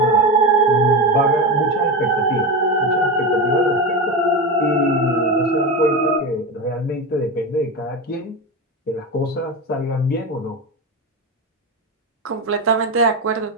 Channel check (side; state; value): both; normal; correlation 0.19